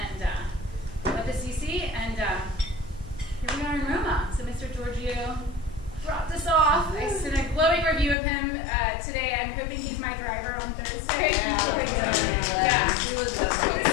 went to CC, and here we are in Roma. So Mr. Giorgio dropped us off. I sent a glowing review of him today. I'm hoping he's my driver on Thursday. Yeah. It was so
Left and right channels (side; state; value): right; drops out; at 8.2 s